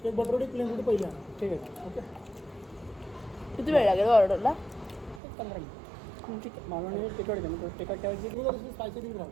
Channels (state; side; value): drops out; left; at 5.2 s